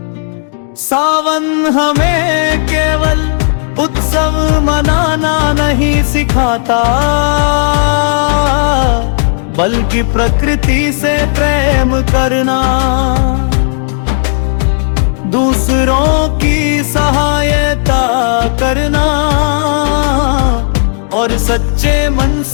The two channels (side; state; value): right; silent; digital silence